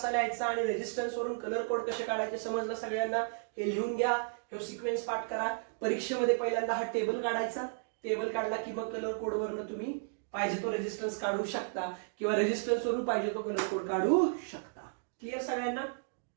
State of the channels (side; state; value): left; silent; digital silence